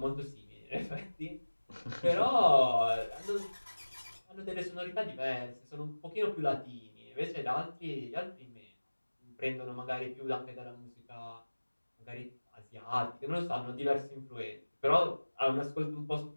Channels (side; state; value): both; inverted; correlation -1.00